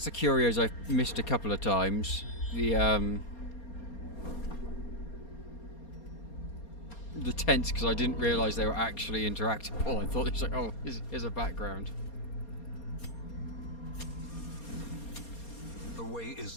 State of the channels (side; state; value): right; late; 4.3 ms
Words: the curios I've missed a couple of times. The tents, because I didn't realise they were actually interactable. I thought it was like, oh, here's a background. The way